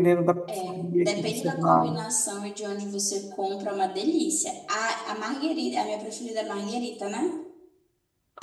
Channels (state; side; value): identical; both; correlation 1.00